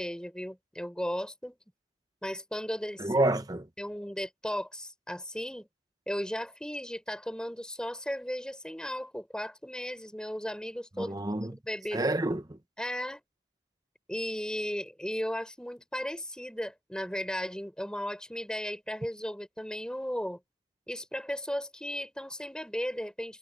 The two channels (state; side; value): normal; both; correlation 0.83